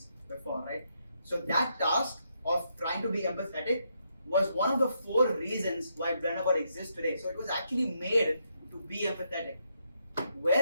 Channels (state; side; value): inverted; both; correlation -0.78